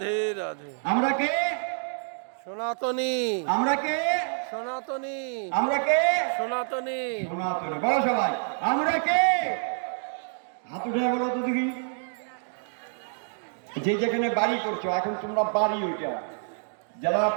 রাধে আমরা কে? সনাতনী আমরা কে? সনাতনী আমরা কে? সনাতনী সনাতনী। বলো সবাই, আমরা কে? হাত উঠে বলো তো দেখি। যে যেখানে বাড়ি করছো, এখন তোমরা বাড়ি, ওইটা যারা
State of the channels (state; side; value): silent; left; digital silence